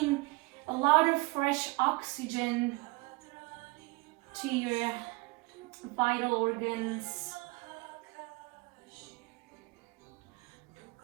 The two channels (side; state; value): left; quieter; 25.3 dB